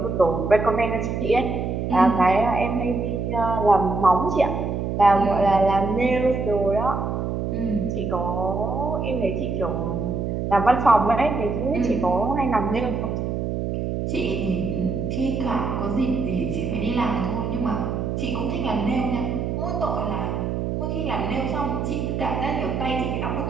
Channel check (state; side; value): noise; right; hum, 2 dB below the sound